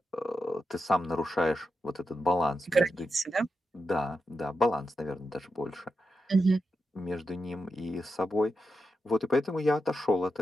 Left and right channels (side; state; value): both; normal; correlation 0.87